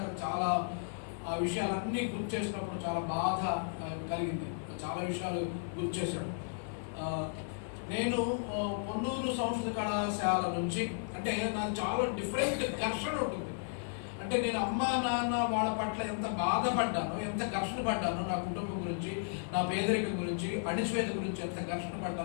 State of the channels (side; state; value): right; silent; 55 dB below the other